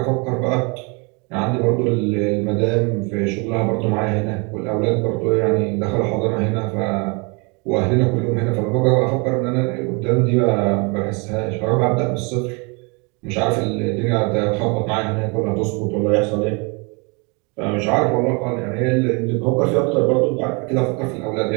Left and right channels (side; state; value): left; quieter; 31.5 dB